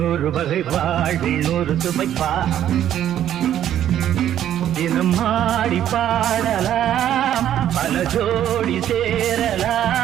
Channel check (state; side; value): quieter; left; 11.0 dB